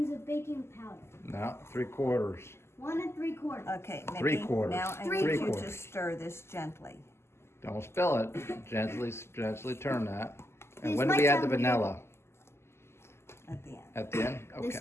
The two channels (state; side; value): late; right; 0.12 ms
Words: of baking powder. Now 3/4. 1 3/4. Okay, Mickey, 3/4. now I Three need you to quarters. stir this gently. Don't spill it. Gently turn that. And These when do might we add the sound weird. vanilla? At the end. At the end? This